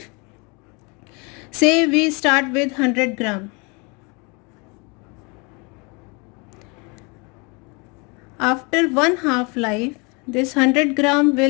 Say we start with 100 gram. After one half-life, this 100 gram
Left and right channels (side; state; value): right; quieter; 30.4 dB